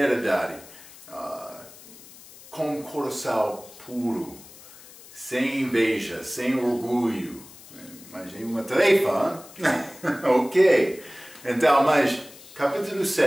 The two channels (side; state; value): left; noise; hiss, 20 dB below the sound